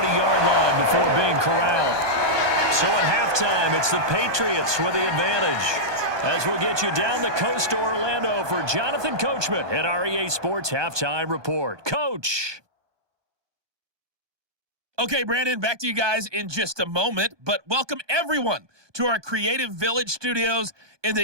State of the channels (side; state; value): left; late; 1.2 ms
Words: line before being corralled. So at halftime, it's the Patriots with the advantage. As we'll get you down the coast to Orlando for Jonathan Coachman at our EA Sports Halftime Report. Coach! Okay, Brandon, back to you guys in just a moment, but welcome everyone to our Creative Village studios in